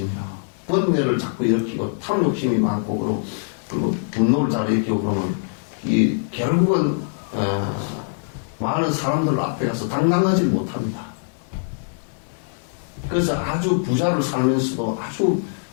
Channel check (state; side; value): silent; right; digital silence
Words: 번뇌를 자꾸 일으키고 탐욕심이 많고 그리고 분노를 잘 일으키고 그러면 이 결국은 많은 사람들 앞에 가서 당당하지 못합니다. 그래서 아주 부자를 살면서도 아주